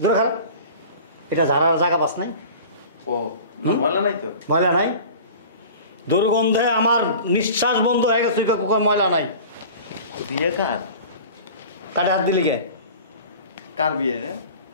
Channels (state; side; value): inverted; both; correlation -0.40